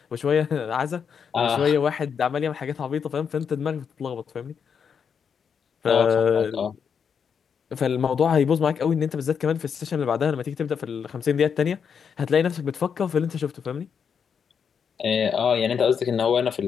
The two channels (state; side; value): quieter; right; 6.9 dB